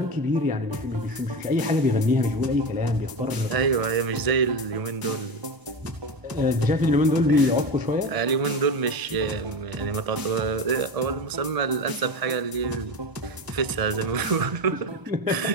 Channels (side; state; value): left; late; 1.0 ms